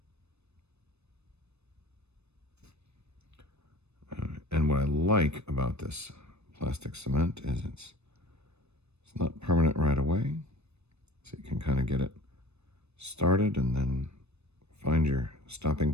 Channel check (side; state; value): left; late; 0.81 ms